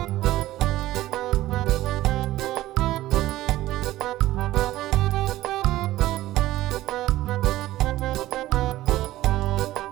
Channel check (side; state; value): left; quieter; 15.8 dB